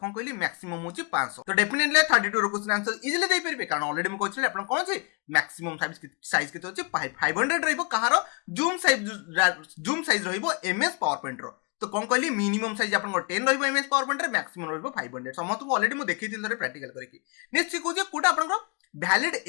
कहली मैक्सिमम होची 500 तो डेफिनेटली 32 रो क्वेश्चन आंसर इजीली दे परबे कारण ऑलरेडी म कहछि आपण कोन छै मैक्सिमम साइज केते होची 500 रहइबो कहार जूम साइज रहइबो एमएस पावर पॉइंट रो तो कौन कहली मिनिमम साइज आपन 10 रहइबो एमएस पावर पॉइंट रे मैक्सिमम रहइबो 500 समस्त को ऑलरेडी म देखैथिल थरे प्रैक्टिकल करके नेक्स्ट को जे कोटा आपन भैलिड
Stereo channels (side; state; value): right; quieter; 35.1 dB